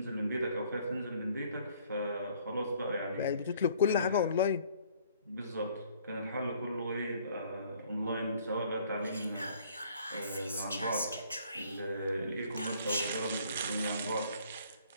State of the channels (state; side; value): inverted; both; correlation -0.59